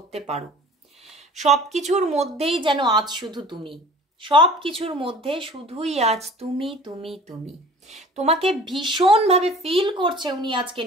পারো। সব কিছুর মধ্যেই যেন আজ শুধু তুমি, সব কিছুর মধ্যে শুধুই আজ তুমি তুমি তুমি। তোমাকে ভীষণভাবে ফিল করছে উনি আজকে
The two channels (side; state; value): both; normal; correlation 0.45